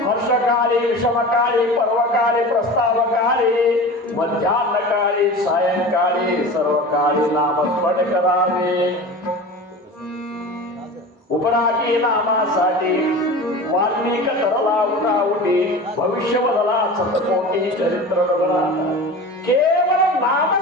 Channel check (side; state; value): both; normal; correlation 0.34